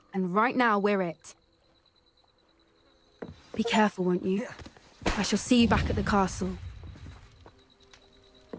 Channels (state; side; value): identical; both; correlation 1.00